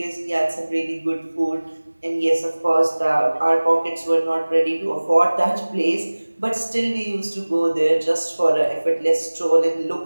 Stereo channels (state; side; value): inverted; both; correlation -1.00